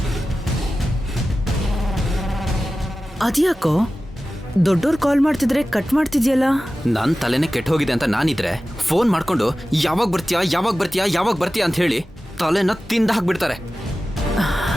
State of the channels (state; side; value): normal; both; correlation 0.95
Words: ಅದ್ಯಾಕೋ ದೊಡ್ಡೋರ್ ಕಾಲ್ ಮಾಡ್ತಿದ್ರೆ ಕಟ್ ಮಾಡ್ತಿದ್ಯಲ್ಲ? ನನ್ನ ತಲೆನೇ ಕೆಟ್ಟ ಹೋಗಿದೆ ಅಂತ ನಾನಿದ್ರೆ ಫೋನ್ ಮಾಡ್ಕೊಂಡು ಯಾವಾಗ ಬರ್ತೀಯಾ ಯಾವಾಗ ಬರ್ತೀಯಾ ಯಾವಾಗ ಬರ್ತೀಯಾ ಅಂತ ಹೇಳಿ ತಲೆನ ತಿಂದ ಹಾಕ್ಬಿಡ್ತಾರೆ.